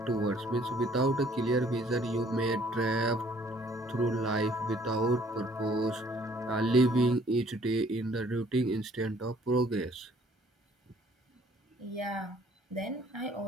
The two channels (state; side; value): normal; both; correlation 0.59